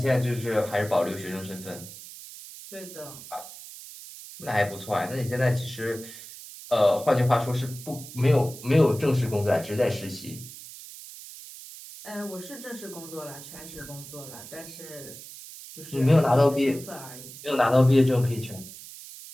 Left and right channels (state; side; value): noise; right; hiss, 15 dB below the sound